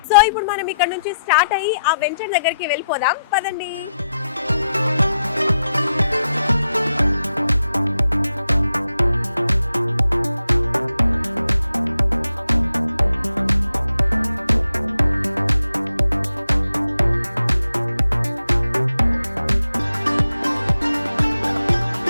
సో ఇప్పుడు మనం ఇక్కడ నుంచి స్టార్ట్ అయ్యి ఆ వెంచర్ దగ్గరికి వెళ్ళిపోదాం, పదండి.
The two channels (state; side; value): inverted; both; correlation -0.84